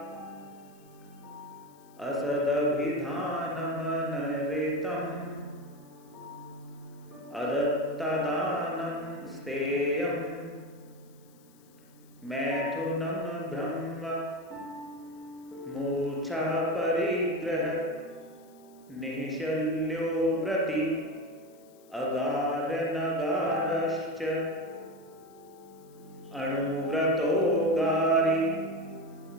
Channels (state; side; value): noise; left; hiss, 29 dB below the sound